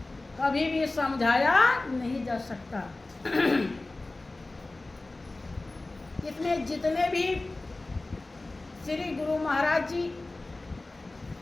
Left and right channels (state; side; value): quieter; right; 3.0 dB